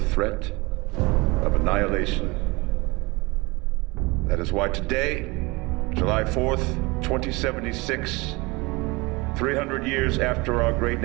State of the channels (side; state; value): left; quieter; 24.7 dB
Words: of annihilation. That is why today, July 4th, 2076, 300 years after our great